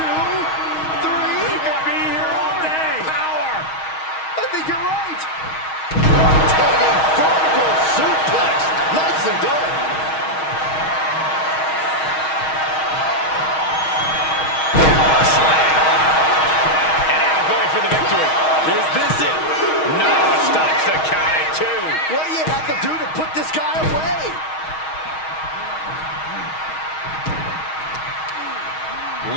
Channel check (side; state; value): right; late; 6.3 ms